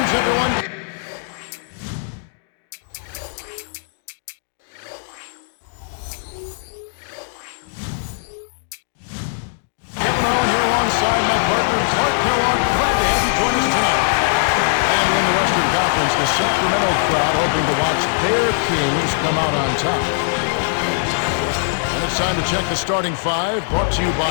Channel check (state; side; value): silent; right; digital silence